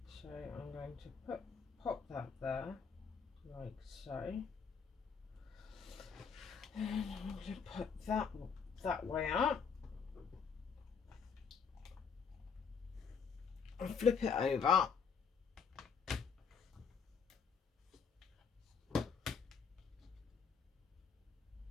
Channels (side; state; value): right; quieter; 6.1 dB